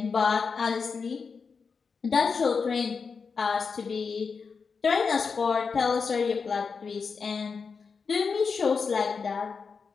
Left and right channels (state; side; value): quieter; right; 5.3 dB